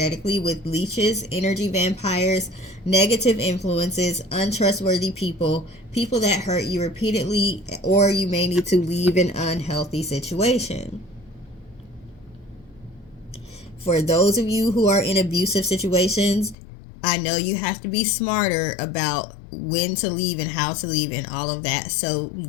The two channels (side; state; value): right; drops out; at 16.6 s